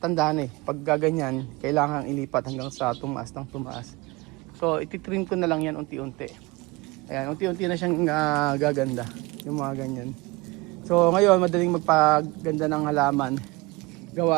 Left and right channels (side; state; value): left; quieter; 23.2 dB